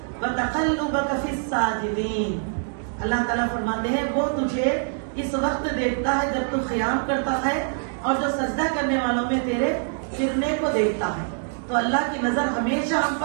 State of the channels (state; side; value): silent; left; 62 dB below the other